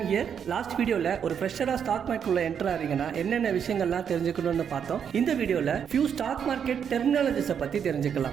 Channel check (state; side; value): quieter; left; 7.8 dB